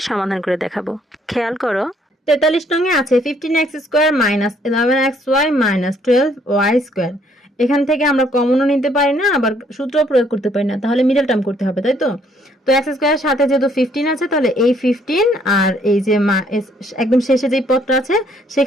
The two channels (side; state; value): both; normal; correlation 0.66